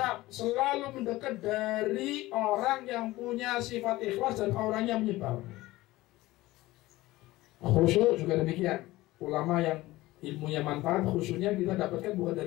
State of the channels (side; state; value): right; quieter; 18.3 dB